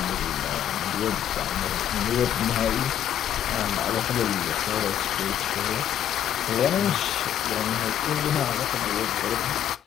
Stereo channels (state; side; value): quieter; right; 10.3 dB